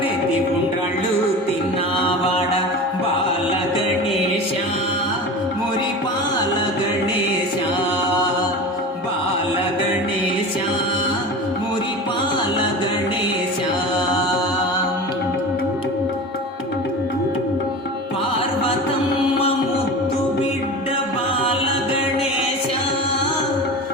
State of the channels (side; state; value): both; normal; correlation 0.32